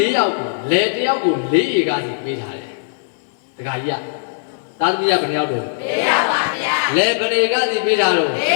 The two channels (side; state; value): right; silent; digital silence